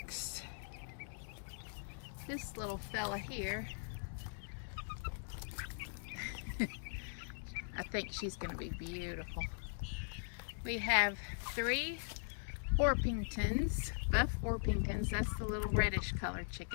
This little fella here, I think she's going to be beautiful. We have 3 Orpingtons, buff Orpingtons. That's the little reddish colored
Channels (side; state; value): right; silent; digital silence